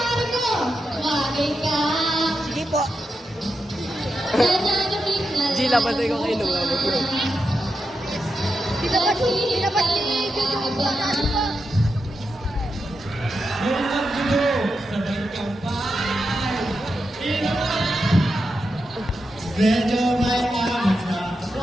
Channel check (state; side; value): normal; both; correlation 0.87